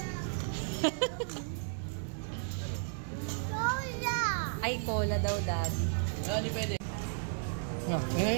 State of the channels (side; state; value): left; silent; 55 dB below the other